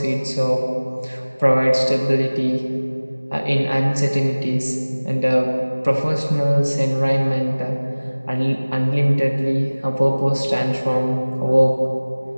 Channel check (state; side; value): inverted; both; correlation -1.00